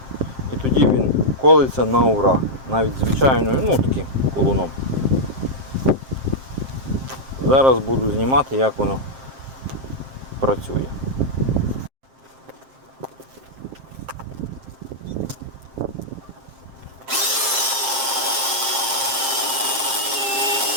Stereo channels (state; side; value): late; left; 7.6 ms